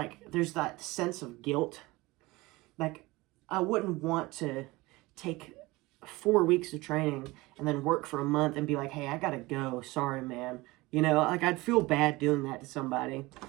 there's that sense of guilt. Like, I wouldn't want to take 4 weeks of training and then work for a month and be like, hey, I gotta go. Sorry, man. You know, like, I'd feel bad doing that to somebody.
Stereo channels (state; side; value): quieter; left; 21.4 dB